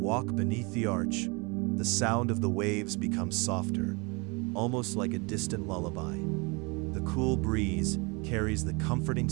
beneath the arch, the sound of the waves becomes softer, almost like a distant lullaby. The cool breeze carries the comforting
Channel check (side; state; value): left; quieter; 28.8 dB